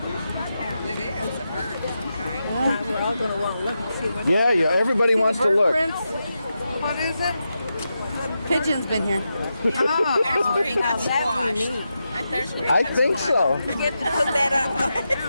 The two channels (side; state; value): both; inverted; correlation -0.88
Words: Yeah, everybody wants to Bird look. prints. What is it? Pigeon's been here. Oh, that's where he got squashed. There's where he I got think squashed. so. We get to put that